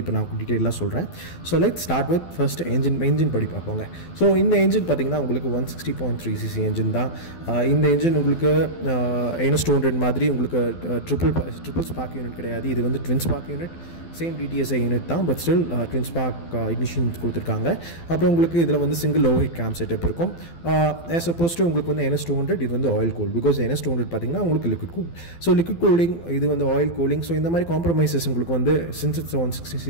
இப்போ நான் டீட்டெயிலாக சொல்கிறேன். So let's start with first engine படி பார்ப்போங்க. ஸோ இந்த என்ஜின் பார்த்தீங்கன்னா உங்களுக்கு 160.3cc என்ஜின் தான். இந்த என்ஜின் உங்களுக்கு NS 200 மாதிரி உங்களுக்கு ட்ரிபிள் ஸ்பார்க் யூனிட் கிடையாது. இது வந்து twin spark unit, same DTSI unit தான், but still twin spark ignition கொடுத்துருக்காங்க. அப்புறம் உங்களுக்கு இதில் வந்து single overhead cam setup இருக்கும். ஆஸ் அப்போஸ் டு உங்களுக்கு வந்து NS 200 இது வந்து ஆயில் கூல். பிகாஸ் NS 200 பார்த்தீங்கன்னா உங்களுக்கு liquid cool. So liquid cooling, இது வந்து ஆயில் கூலிங். ஸோ இந்த மாதிரி காம்ப்ரமைசஸ் உங்களுக்கு வந்து since it's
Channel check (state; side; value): late; right; 12 ms